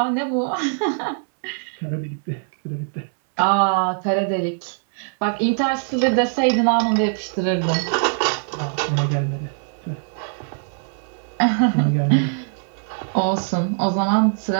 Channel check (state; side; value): silent; left; 64 dB below the other